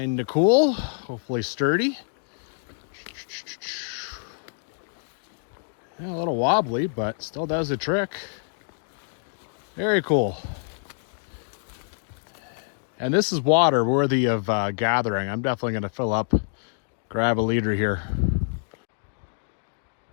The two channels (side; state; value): right; silent; digital silence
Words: cool, hopefully sturdy. Yeah, a little wobbly, but still does the trick. Very cool. And this is water worthy of gathering. I'm definitely gonna fill up, grab a liter here.